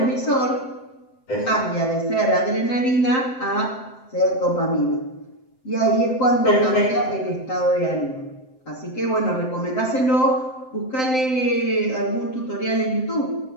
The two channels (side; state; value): right; late; 7.7 ms